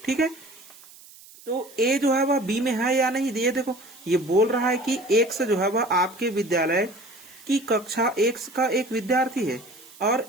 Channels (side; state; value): right; noise; hiss, 22 dB below the sound